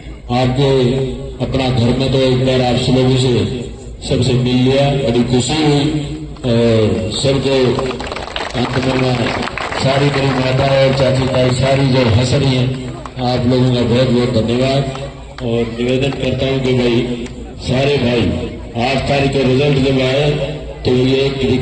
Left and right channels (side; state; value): both; identical; correlation 1.00